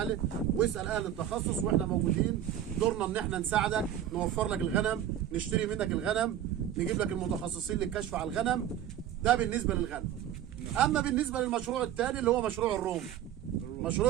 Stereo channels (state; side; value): quieter; left; 10.9 dB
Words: واسال اهل التخصص، واحنا موجودين. دورنا ان احنا نساعدك، نوفر لك الغنم، نشتري منك الغنم، نجيب لك المتخصصين للكشف على الغنم. ده بالنسبه للغنم. اما بالنسبه للمشروع الثاني اللي هو مشروع الروم.